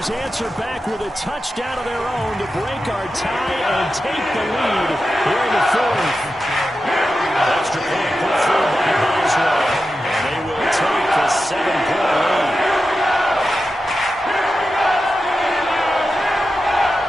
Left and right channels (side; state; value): both; normal; correlation 0.91